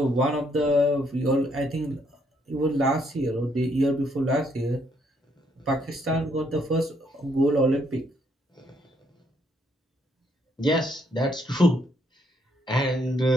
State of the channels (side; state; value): both; normal; correlation 0.71